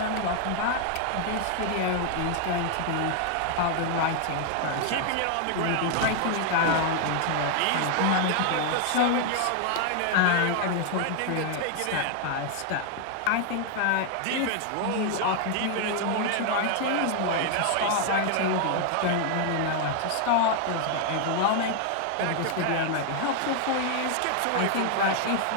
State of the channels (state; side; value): different; both; correlation 0.00